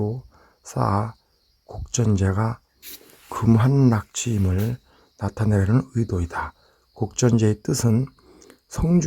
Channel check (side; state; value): both; identical; correlation 1.00